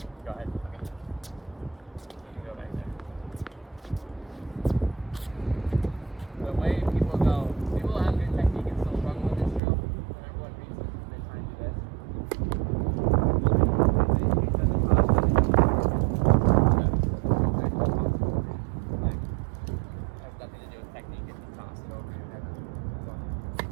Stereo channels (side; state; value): left; drops out; at 9.6 s